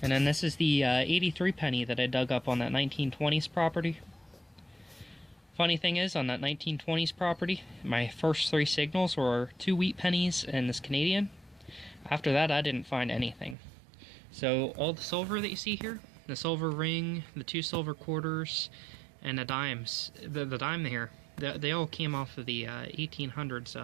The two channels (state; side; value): drops out; left; at 13.6 s